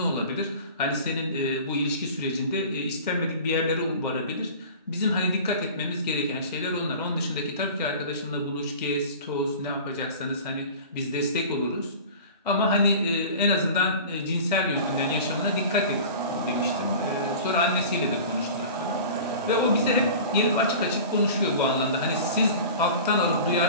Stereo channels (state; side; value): inverted; both; correlation -0.38